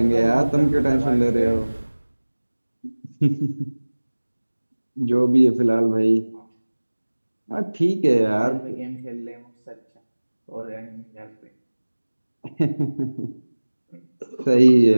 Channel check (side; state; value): both; inverted; correlation -1.00